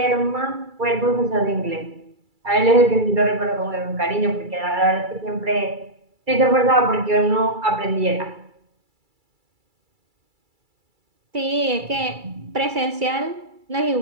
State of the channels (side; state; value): left; late; 2.3 ms